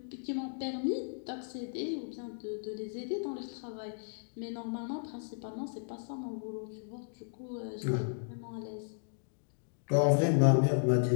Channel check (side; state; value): right; silent; digital silence